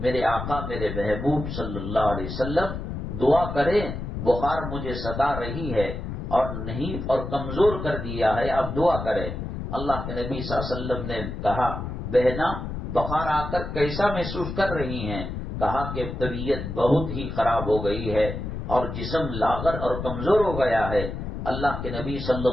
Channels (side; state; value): left; noise; rumble, 6 dB below the sound